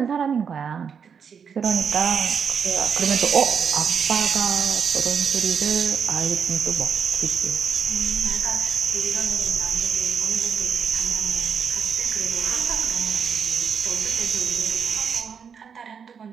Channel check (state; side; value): quieter; left; 6.8 dB